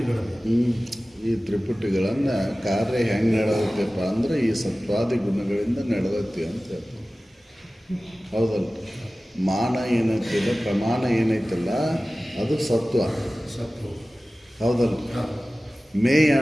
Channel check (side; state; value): both; normal; correlation 0.97